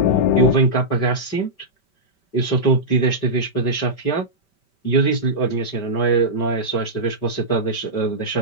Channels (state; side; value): late; right; 5.2 ms